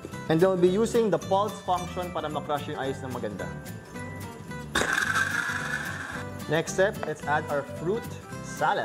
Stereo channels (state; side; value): identical; both; correlation 1.00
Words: And then we'll be using the pulse function para makrush yung ice ng maganda. Next step, let's add our fruit